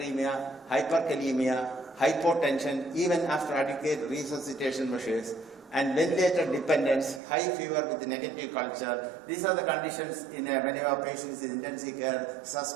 hyperkalemia, hypotension, even after adequate resuscitation measures, and ventilator dependence, high fever with negative culture. These are the conditions in many of our patients in intensive care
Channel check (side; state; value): left; drops out; at 7.2 s